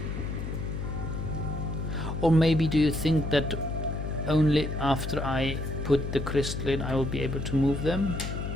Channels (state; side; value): noise; left; hum, 4 dB below the sound